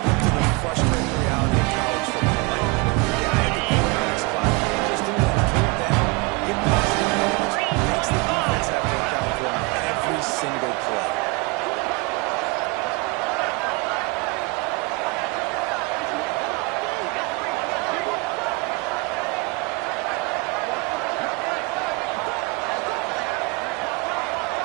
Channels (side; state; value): left; quieter; 27.3 dB